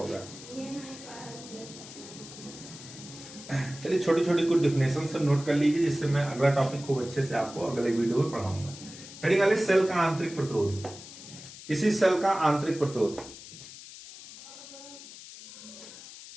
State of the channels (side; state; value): left; noise; hiss, 15 dB below the sound